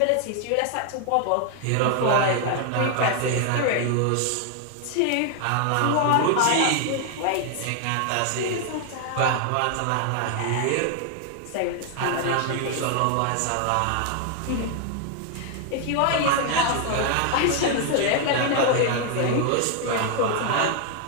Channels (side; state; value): both; different; correlation 0.00